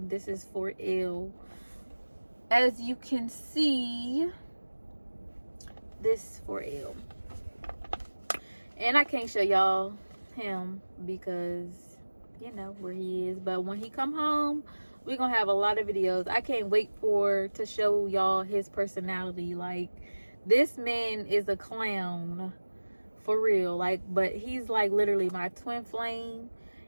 This is for ill. As you can see, this for ill. And I can't show y'all him because you know where he is. But when he come home, we're gonna have a lot of videos. I can't wait to show y'all his personality. Like, this man is a clown for real. Like, but he's like literally my twin flame,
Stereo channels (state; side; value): inverted; both; correlation -1.00